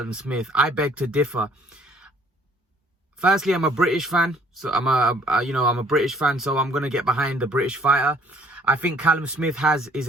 Smith. I beg to differ. Firstly, I'm a British fan, so I'm a British fan, so I'm going to get behind the British fighter. I think Callum Smith has his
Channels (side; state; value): both; normal; correlation 0.59